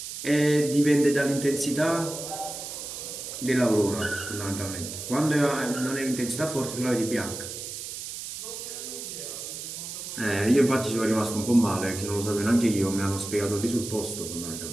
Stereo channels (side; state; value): right; noise; hiss, 8 dB below the sound